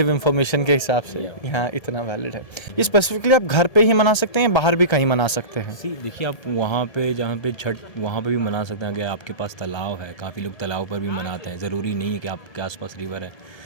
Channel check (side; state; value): right; late; 1.3 ms